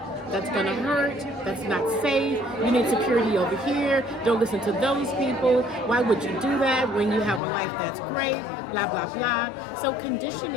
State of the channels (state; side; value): drops out; right; at 7.4 s